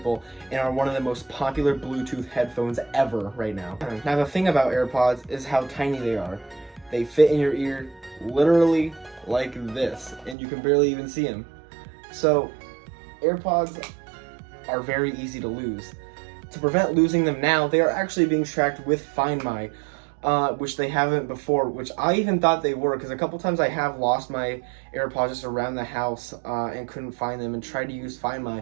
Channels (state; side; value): drops out; left; at 10.4 s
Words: and are one of the most popular Bluetooth headphones ever right now. Now the thing about AirPods is how tiny they are. They fit in your ear literally like this, and you can barely even see them. So AirPods are very easy to lose. To prevent losing them now, they are actually being tracked with Find My, which they haven't before, which I even thought they were, because a couple times I have lost my AirPods just around the house and couldn't find them and tried to use Find My,